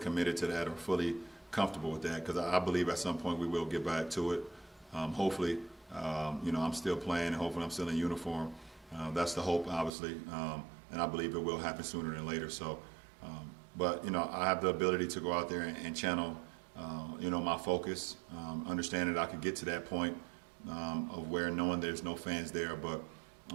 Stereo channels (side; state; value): left; drops out; at 9.9 s